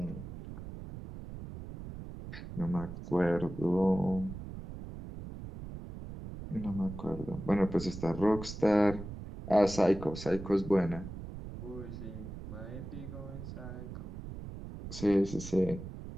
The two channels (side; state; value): right; noise; rumble, 10 dB below the sound